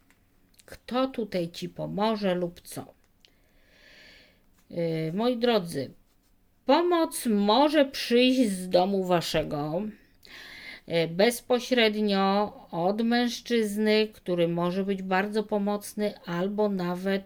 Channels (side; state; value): both; identical; correlation 1.00